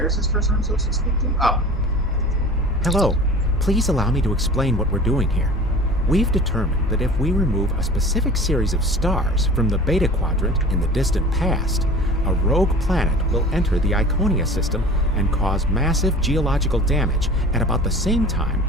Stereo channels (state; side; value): normal; both; correlation 0.40